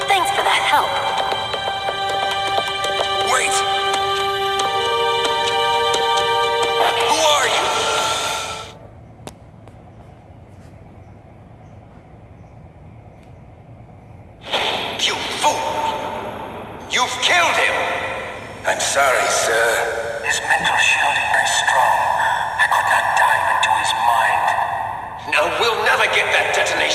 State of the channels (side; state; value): both; identical; correlation 1.00